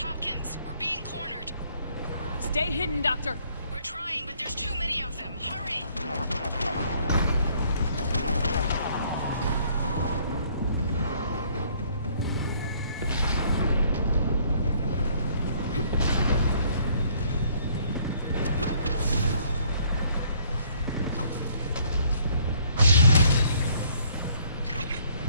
We're being cornered. Stay hidden, Doctor. We're trying, but there's too many of them. Hurry!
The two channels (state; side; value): inverted; both; correlation -0.63